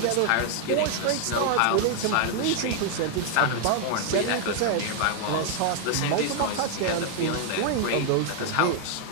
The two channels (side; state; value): both; different; correlation 0.00